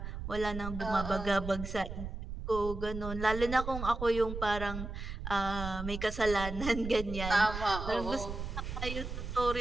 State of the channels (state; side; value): noise; right; rumble, 7 dB below the sound